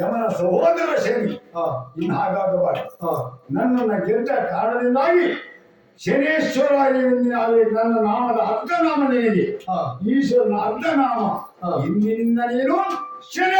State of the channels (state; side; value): identical; both; correlation 1.00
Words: ಸಹೋದರ ಶನಿ. ಇನ್ನು ಹಾಗಾಗಬಾರದು. ನನ್ನನ್ನು ಗೆದ್ದ ಕಾರಣದಿಂದಾಗಿ ಶನೇಶ್ವರ ನನ್ನ ನಾಮದ ಅರ್ಧನಾಮ ನಿನಗೆ, ಈಶ್ವರನ ಅರ್ಧನಾಮ. ಇಂದಿನಿಂದ ನೀನು